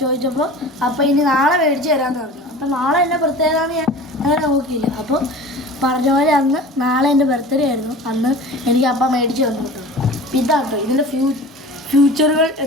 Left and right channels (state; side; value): normal; both; correlation 0.39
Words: ചോദിച്ചപ്പോൾ അപ്പോൾ ഇനി നാളെ മേടിച്ച് തരാമെന്ന് പറഞ്ഞു. അപ്പോൾ നാളെ എൻ്റെ ബർത്ത്ഡേന്ന് ഞാൻ അങ്ങനെ നോക്കിയില്ല. അപ്പോൾ പറഞ്ഞ പോലെ അന്ന് നാളെ എൻ്റെ ബർത്ത്ഡേ ആയിരുന്നു. അന്ന് എനിക്ക് അപ്പം മേടിച്ച് തന്നു കേട്ടോ. ഇതാട്ടോ ഇതിൻ്റെ ഫ്യൂച്ചറുകൾ